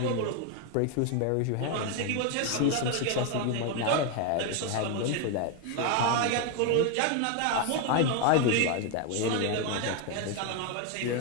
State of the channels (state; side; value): different; both; correlation 0.01